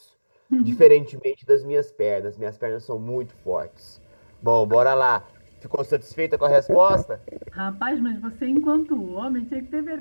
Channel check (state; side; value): inverted; both; correlation -1.00